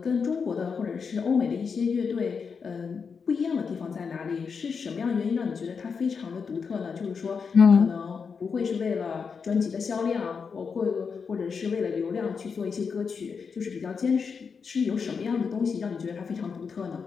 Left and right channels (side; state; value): right; quieter; 5.7 dB